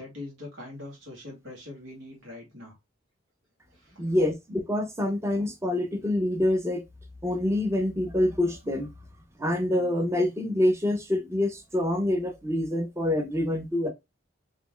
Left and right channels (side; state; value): both; normal; correlation 0.81